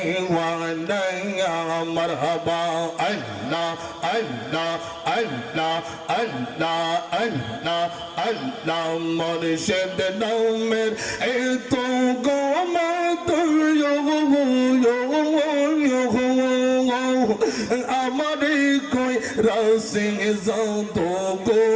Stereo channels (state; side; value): identical; both; correlation 1.00